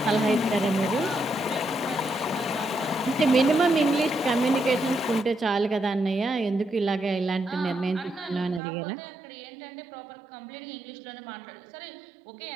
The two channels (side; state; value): left; drops out; at 8.6 s